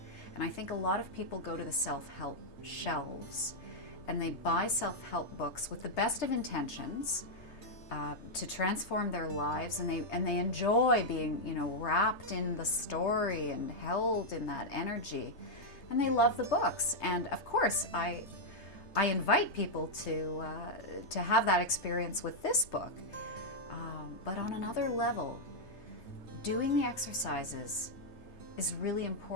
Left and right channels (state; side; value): late; right; 3.3 ms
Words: And I think a lot of people go to the self-help shelves and they buy self-help books with the best of intentions to transform their lives, and they enjoy being, you know, wrapped in the story and held in that energy, and they love the books. And of course, I invite people to have that experience with this book, but on another level, doing the exercises is really